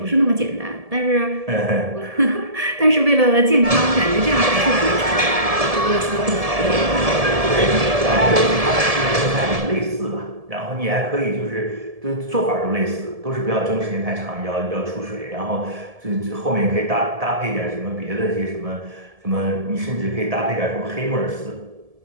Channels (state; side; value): late; left; 1.7 ms